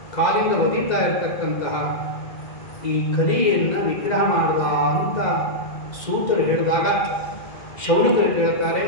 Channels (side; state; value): right; late; 2.0 ms